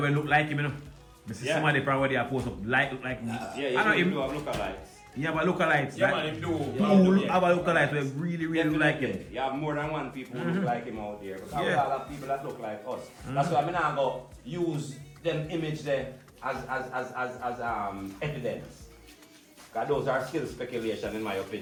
will look like him, somebody probably are supposed to look like me. Yeah, you do have lookalikes. You have a lookalikes. Yeah, man, him do. Who have a lookalike who really look like him. You have more than one people who look like him out there. Because we all have people that look like us. That's why I'm not going to use them image there as evidence. Because those are still speculation in my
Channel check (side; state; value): both; identical; correlation 1.00